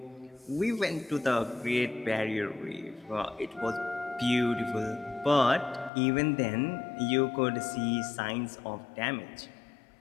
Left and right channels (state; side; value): drops out; right; at 5.9 s